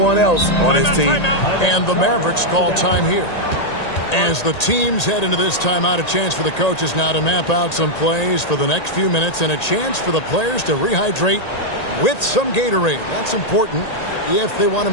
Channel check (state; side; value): late; right; 1.8 ms